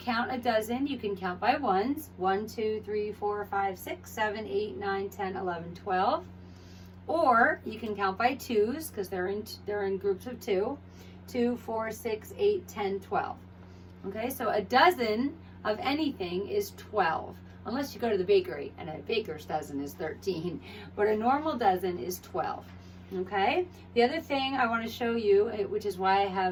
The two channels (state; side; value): identical; both; correlation 1.00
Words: a dozen, you can count by ones. 1, 2, 3, 4, 5, 6, 7, 8, 9, 10, 11, 12. Or you can count by twos, because they're in groups of 2. 2, 4, 6, 8, 10, 12. Okay, so a dozen of anything is 12. Unless you go to the bakery, and a baker's dozen is 13. But a normal dozen is 12. Okay? The other thing I want to show you, which is why I